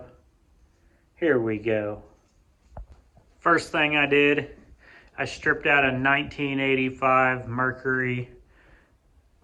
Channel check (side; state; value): both; identical; correlation 1.00